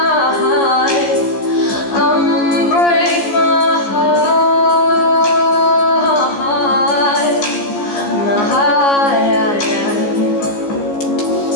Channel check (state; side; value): late; right; 14 ms